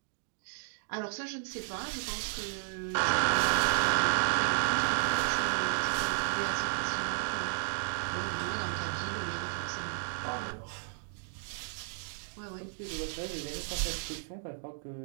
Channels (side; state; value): left; silent; digital silence